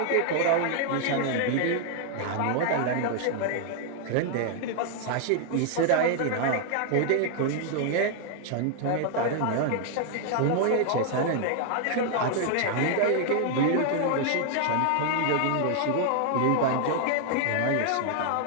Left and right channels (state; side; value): different; both; correlation 0.00